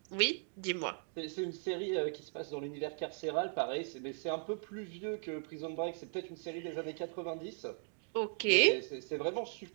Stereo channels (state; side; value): silent; left; 52 dB below the other